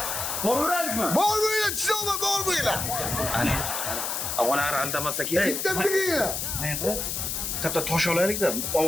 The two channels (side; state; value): left; noise; hiss, 2 dB below the sound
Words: Boruraylikmi? Bormaylar, chisoma bormaylar. Ana. Avvalar aldamasa kerak. Bitamda kelinglar. Qayerda? Katta tosh olaylik-da,